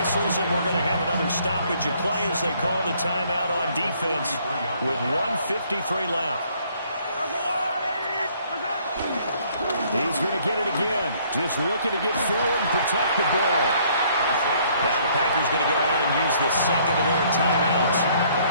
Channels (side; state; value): both; inverted; correlation -0.63